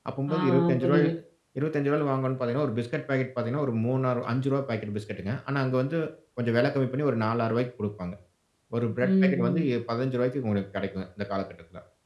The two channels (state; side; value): identical; both; correlation 1.00